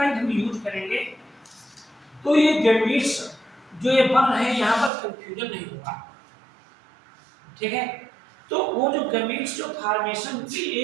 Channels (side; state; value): left; drops out; at 4.9 s